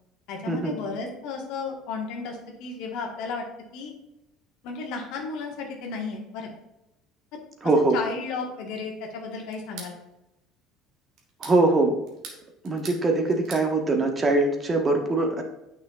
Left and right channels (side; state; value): both; normal; correlation 0.53